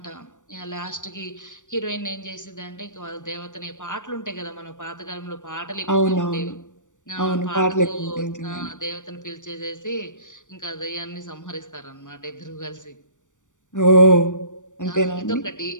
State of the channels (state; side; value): late; right; 0.86 ms